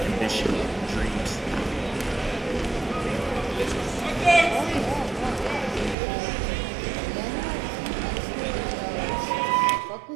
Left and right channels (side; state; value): left; drops out; at 6.0 s